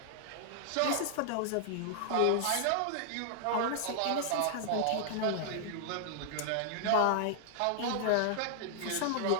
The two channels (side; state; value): both; different; correlation -0.01